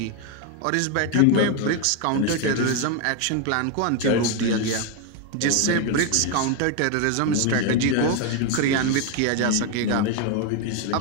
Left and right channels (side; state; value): both; different; correlation 0.01